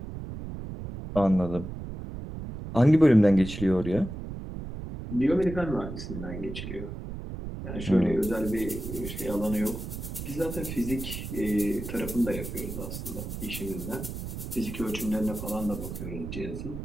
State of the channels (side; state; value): right; noise; rumble, 8 dB below the sound